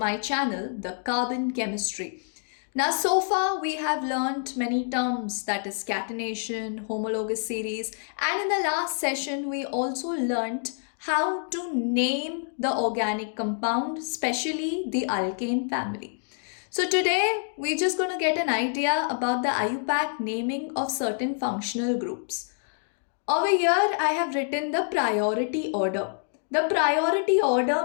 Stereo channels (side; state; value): right; silent; digital silence